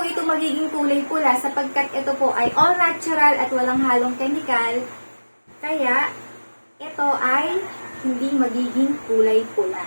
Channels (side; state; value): both; inverted; correlation -1.00